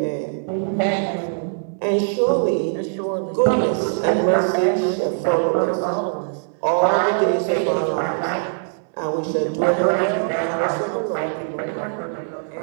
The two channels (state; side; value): silent; left; digital silence